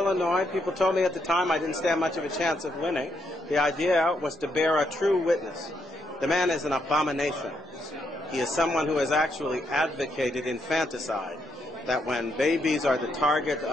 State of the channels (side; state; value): both; normal; correlation 0.78